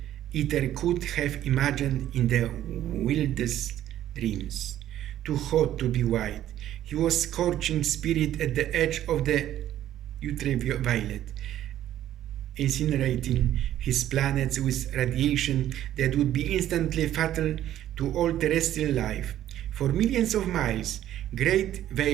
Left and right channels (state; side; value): quieter; left; 12.2 dB